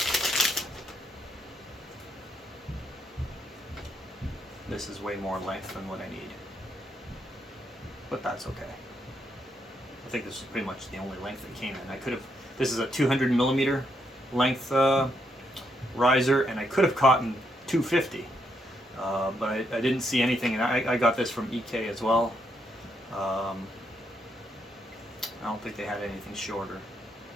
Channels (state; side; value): normal; both; correlation 0.77